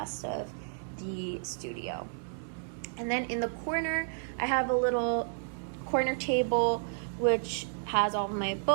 of the studio. And then in the corner, I have a little corner table which has all my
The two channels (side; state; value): left; silent; digital silence